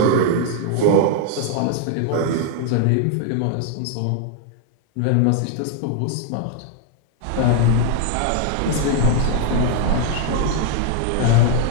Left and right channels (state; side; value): different; both; correlation 0.00